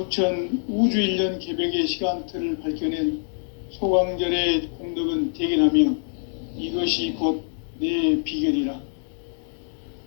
우주일년 개벽의 시간틀을 밝혀낸 소강절의 공덕은 대견하며 이것이 곧 내 비결이라.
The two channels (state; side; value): silent; right; digital silence